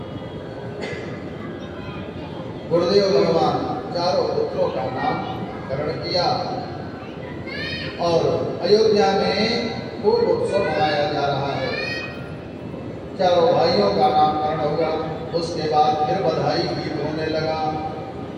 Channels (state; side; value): identical; both; correlation 1.00